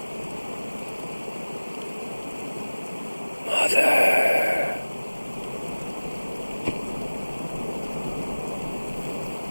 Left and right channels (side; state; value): both; inverted; correlation -1.00